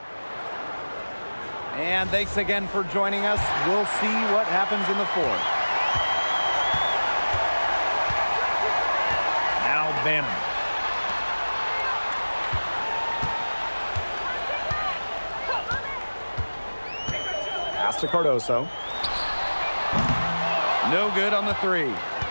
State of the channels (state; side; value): inverted; both; correlation -1.00